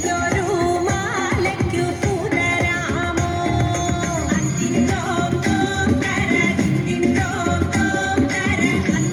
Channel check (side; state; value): both; identical; correlation 1.00